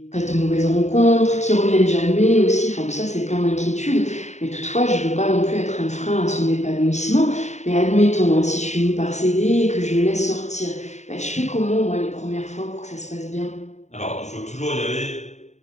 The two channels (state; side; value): late; right; 0.34 ms